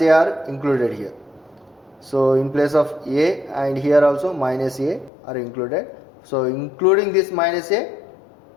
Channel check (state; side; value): drops out; right; at 5.1 s